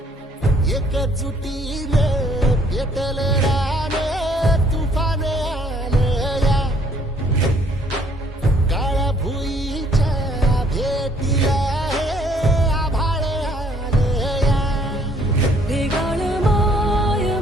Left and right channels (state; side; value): normal; both; correlation 0.63